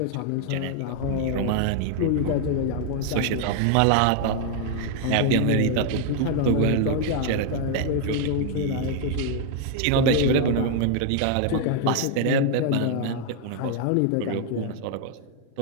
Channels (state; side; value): different; both; correlation 0.00